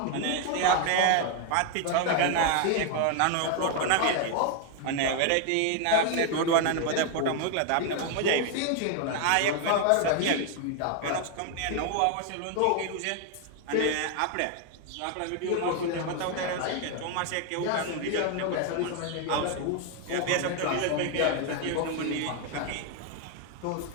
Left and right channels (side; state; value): both; different; correlation 0.00